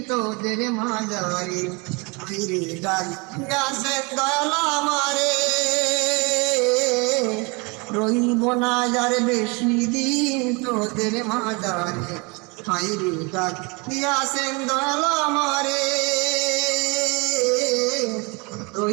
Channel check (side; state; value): left; quieter; 29.1 dB